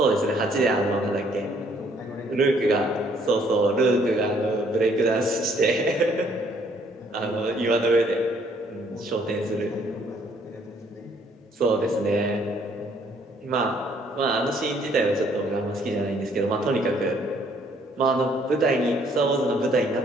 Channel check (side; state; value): both; normal; correlation 0.64